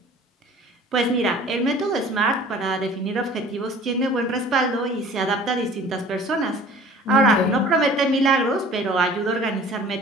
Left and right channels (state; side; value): normal; both; correlation 0.47